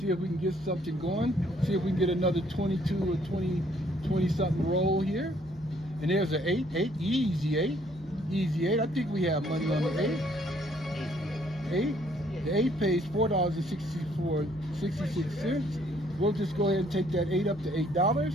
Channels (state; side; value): normal; both; correlation 0.65